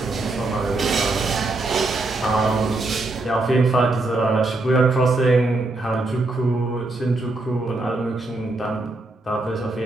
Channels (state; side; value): quieter; left; 3.1 dB